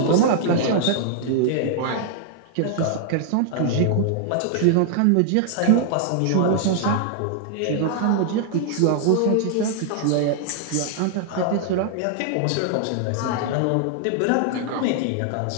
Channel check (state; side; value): different; both; correlation 0.00